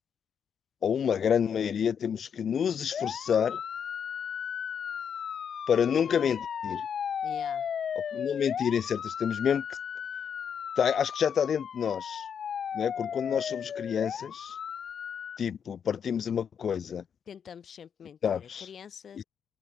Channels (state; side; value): quieter; right; 7.5 dB